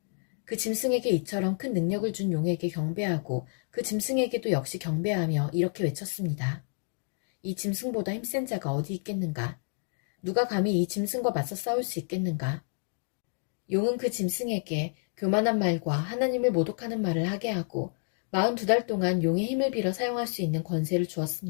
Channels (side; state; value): right; silent; 57 dB below the other